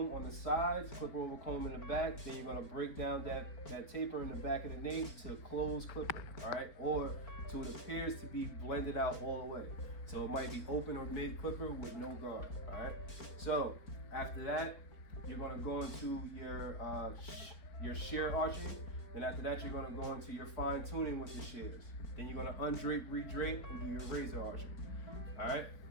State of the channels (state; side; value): late; right; 4.4 ms